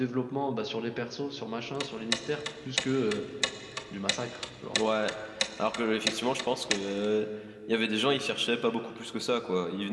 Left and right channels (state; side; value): identical; both; correlation 1.00